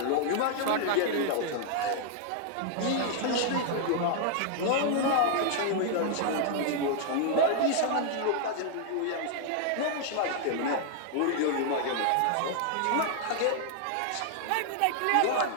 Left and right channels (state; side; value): different; both; correlation 0.00